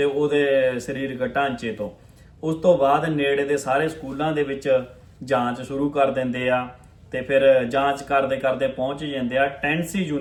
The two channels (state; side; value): identical; both; correlation 1.00